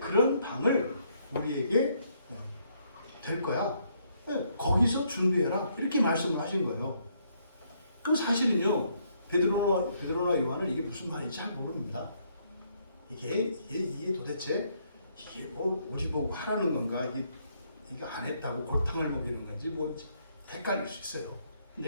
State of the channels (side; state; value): both; inverted; correlation -0.71